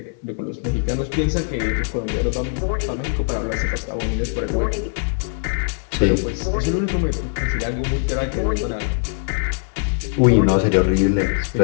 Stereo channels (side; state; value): right; silent; digital silence